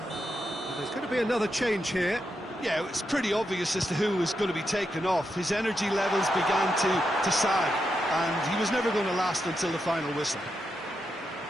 There's going to be another change here. Yeah, it's pretty obvious as to who was going to be taken off. His energy levels began to sag, and he was never going to last until the final whistle.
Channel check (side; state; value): both; normal; correlation 0.85